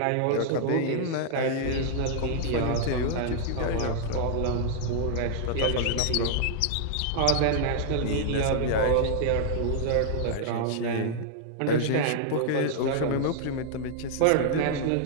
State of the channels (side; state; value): both; different; correlation -0.01